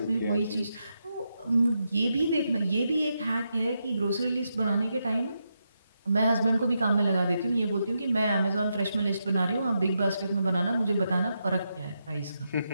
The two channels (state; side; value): inverted; both; correlation -0.84